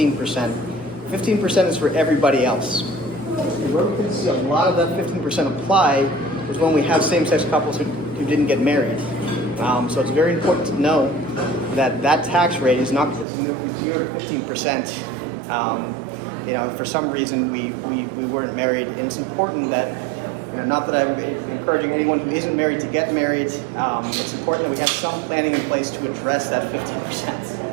15% is for everybody else. And where we can see a lot of that 15% apply is when we have same-sex couples who didn't get married. So it's very important to know that that tax rate is not because we moved from 0 to 15%. If for some reason we weren't married, and it's important that, not that I'm encouraging anyone who isn't married to get married, it's important that we have some planning in place to address that 15%.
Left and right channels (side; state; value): left; drops out; at 13.2 s